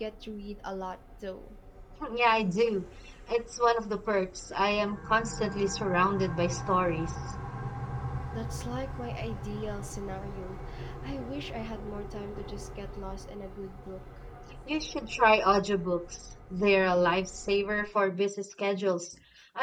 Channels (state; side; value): identical; both; correlation 1.00